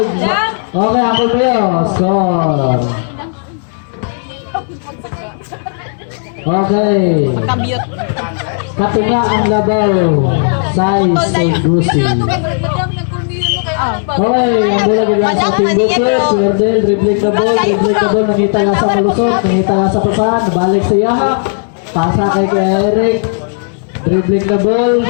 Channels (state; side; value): silent; right; digital silence